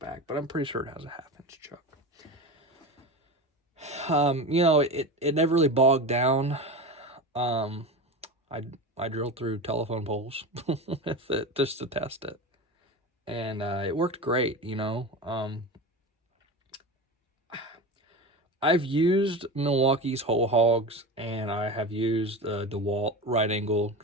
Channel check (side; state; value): both; normal; correlation 0.26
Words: but I'm pretty sure it has a 1/2-inch chuck. It never really bogged down. I drilled through telephone poles with it just to test it, and it worked great. I've used Milwaukee's whole hogs, and I have used DeWalt right angle